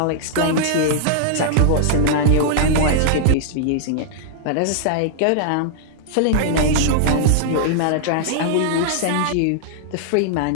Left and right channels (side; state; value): both; different; correlation -0.01